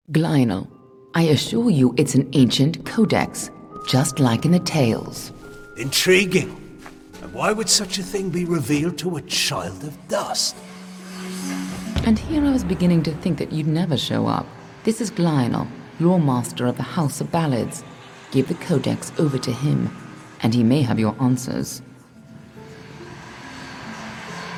Glynel, I assure you it's an ancient codex, just like in the tales. Intriguing. And why would such a thing be revealed to a child of dust? And here I was beginning to think that you'd never show up. This is Glynel, your master of the House of Ballads. Give the codex over to him, and he may have your answers.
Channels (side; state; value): both; identical; correlation 1.00